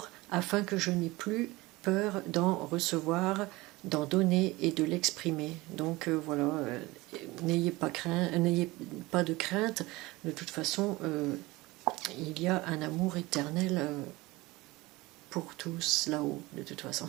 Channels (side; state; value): left; quieter; 21.0 dB